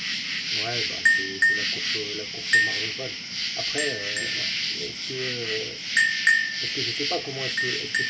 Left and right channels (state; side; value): identical; both; correlation 1.00